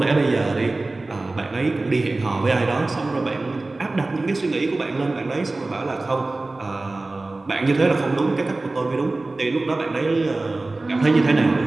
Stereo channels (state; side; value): quieter; left; 3.1 dB